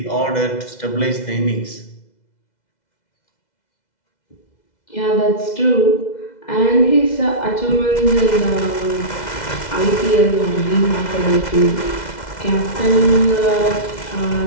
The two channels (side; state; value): right; late; 2.0 ms